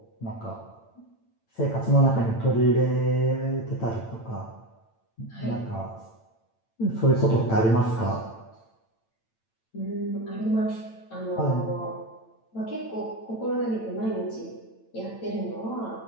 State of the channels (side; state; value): right; late; 8.9 ms